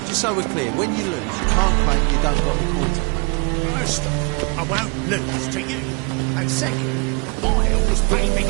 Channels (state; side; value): quieter; left; 33.3 dB